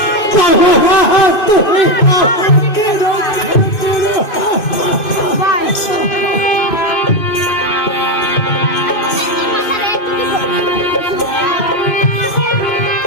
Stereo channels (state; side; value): late; right; 2.5 ms